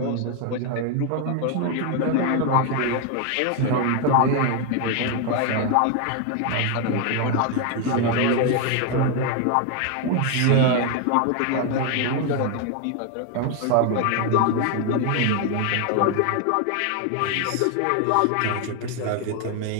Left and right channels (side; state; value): both; different; correlation 0.01